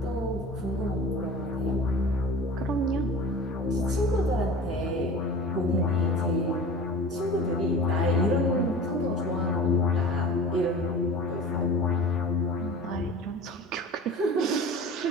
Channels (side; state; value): both; normal; correlation 0.37